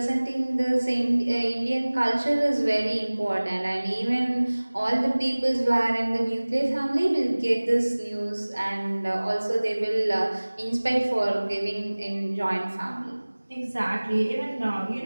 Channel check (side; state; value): both; inverted; correlation -1.00